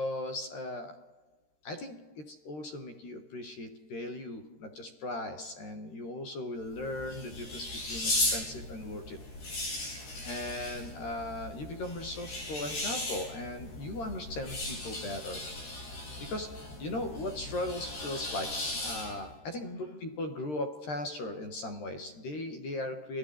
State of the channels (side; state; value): right; late; 13 ms